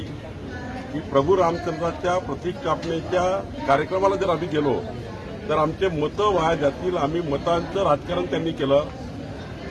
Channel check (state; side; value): identical; both; correlation 1.00